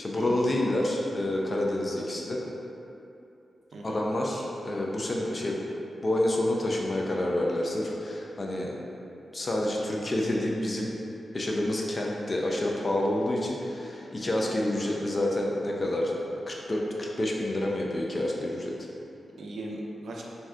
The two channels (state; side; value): normal; both; correlation 0.92